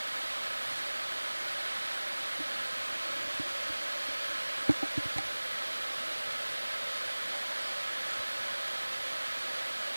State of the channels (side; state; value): both; inverted; correlation -1.00